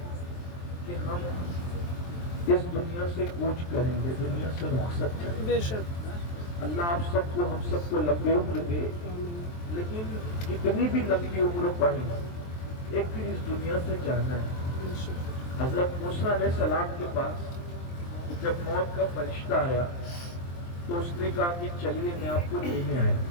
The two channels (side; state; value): right; late; 23 ms